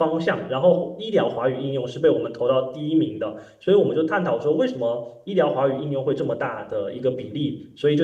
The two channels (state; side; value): identical; both; correlation 1.00